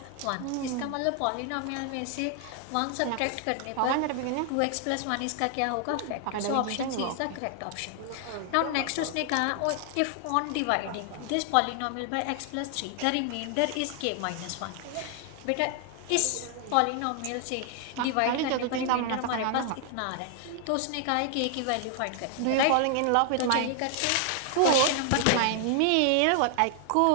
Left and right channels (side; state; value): both; different; correlation 0.00